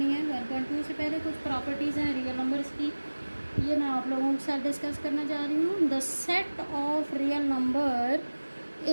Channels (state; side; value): inverted; both; correlation -1.00